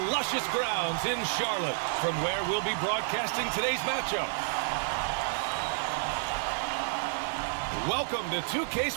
grounds in Charlotte, from where we'll be broadcasting today's matchup. Welcome to 2K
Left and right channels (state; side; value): silent; left; 58 dB below the other